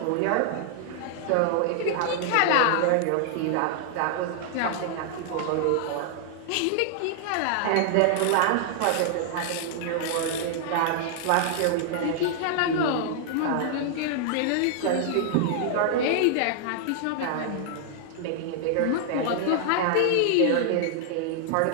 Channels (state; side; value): different; both; correlation -0.01